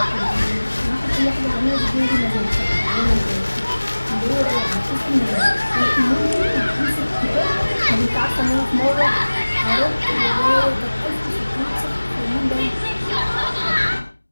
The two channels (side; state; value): both; inverted; correlation -1.00